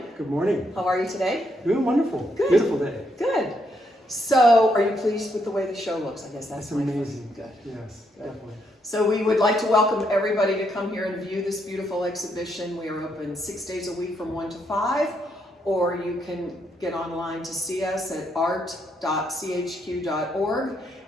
Good morning. How are you today? Doing wonderful. Good. Beautiful day. Good. So are you pleased with the way the show looks? I guess that's amazing. Good. Yes, Good. definitely. So we would like to welcome everybody to come here and view this beautiful exhibition. We are open 6 days a week from 1 to 5, or you can get online to see us at art.chq.org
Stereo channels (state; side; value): normal; both; correlation 0.76